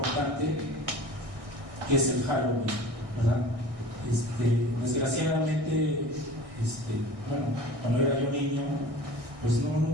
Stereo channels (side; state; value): left; late; 1.6 ms